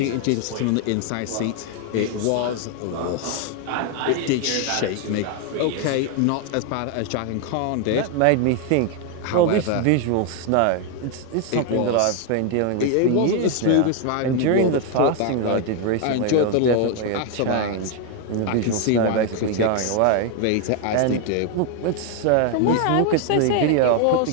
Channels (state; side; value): different; both; correlation 0.01